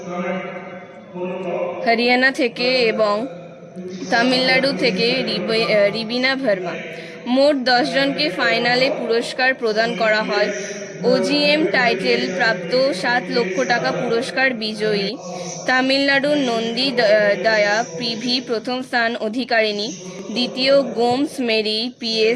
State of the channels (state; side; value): identical; both; correlation 1.00